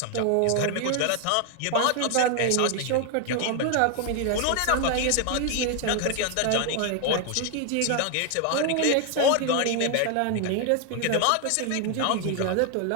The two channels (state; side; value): different; both; correlation 0.01